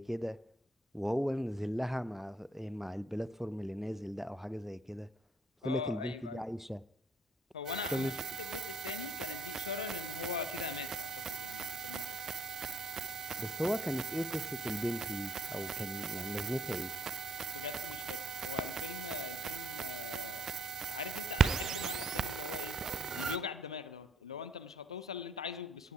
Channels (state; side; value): normal; both; correlation 0.69